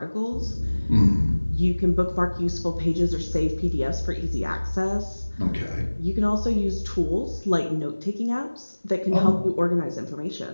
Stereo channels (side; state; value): both; inverted; correlation -1.00